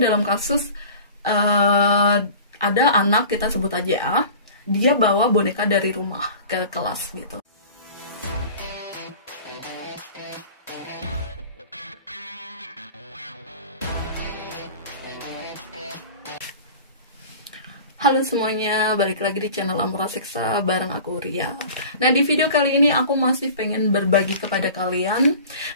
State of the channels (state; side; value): inverted; both; correlation -0.40